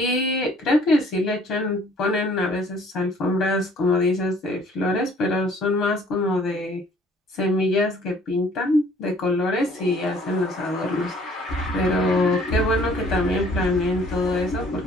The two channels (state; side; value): normal; both; correlation 0.57